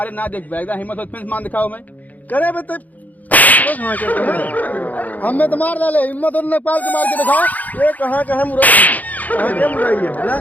ना देख एकदम हिम्मत हो तो फिर मार दिखाओ। मैं करे बे तब हमें तो मार डाले, हिम्मत और नेपाल के मार के दिखाओ। ये कहाँ मुराई, कहाँ क्या मुराई है बोला?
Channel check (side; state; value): right; late; 0.079 ms